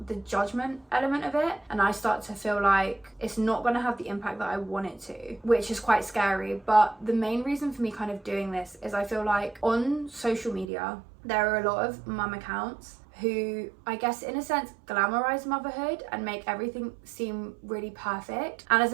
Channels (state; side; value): drops out; left; at 10.7 s